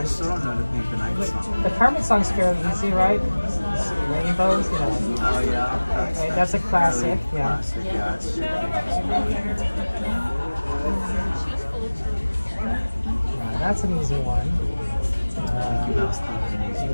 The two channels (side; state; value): both; inverted; correlation -1.00